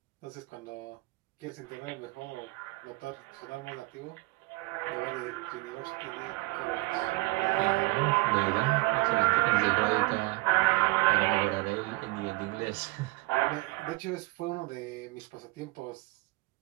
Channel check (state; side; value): quieter; left; 22.7 dB